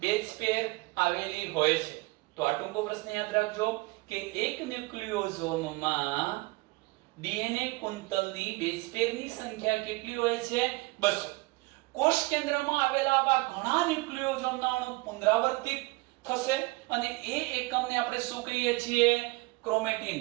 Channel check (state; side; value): quieter; left; 24.0 dB